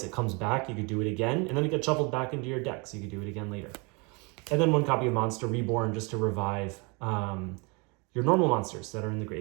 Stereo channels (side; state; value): left; quieter; 30.3 dB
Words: it comes back. You could do it again, and then it gets shuffled back into your deck, so you could do it again later. And then 1 copy of Monster Reborn just to revive your normal monsters that are in the